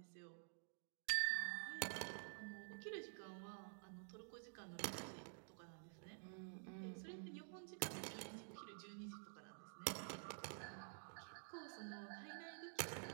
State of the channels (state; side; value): silent; left; digital silence